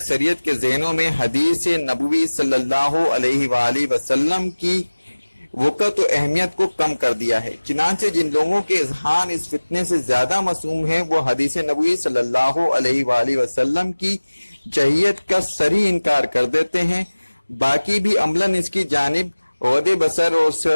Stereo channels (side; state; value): both; inverted; correlation -1.00